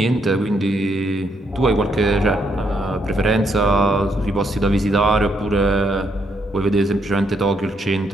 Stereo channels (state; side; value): normal; both; correlation 0.75